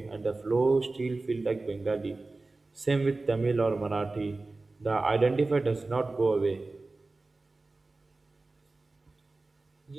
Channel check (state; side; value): quieter; left; 3.4 dB